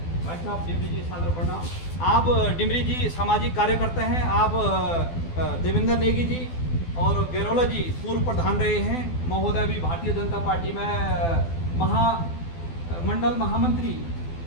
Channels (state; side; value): late; right; 12 ms